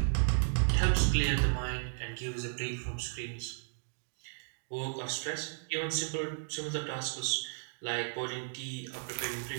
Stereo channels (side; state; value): left; silent; digital silence